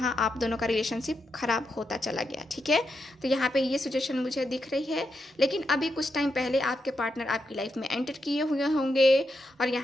आप दोनों का रिलेशनशिप ख़राब होता चला गया, ठीक है। तो यहाँ पे ये सिचुएशन मुझे दिख रही है, लेकिन अभी कुछ टाइम पहले आपके पार्टनर आपकी लाइफ में एंटर किए हुए होंगे, और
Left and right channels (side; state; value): both; normal; correlation 0.84